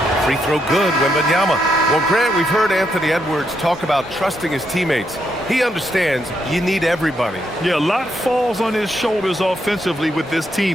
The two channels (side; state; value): both; normal; correlation 0.78